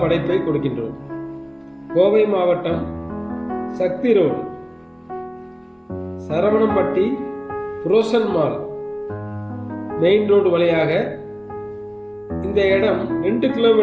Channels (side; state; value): both; identical; correlation 1.00